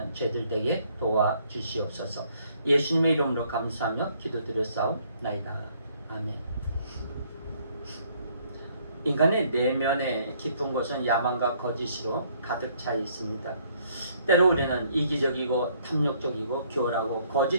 저희들 되게 도와주시옵소서. 예수님의 이름으로 감사하며 기도드렸사옵나이다. 아멘. 인간의 내면에 깊은 곳은 야망과 거짓으로 가득 차 있습니다. 때로 우리는 이기적이고 탐욕적이고 교활하고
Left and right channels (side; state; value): both; inverted; correlation -0.65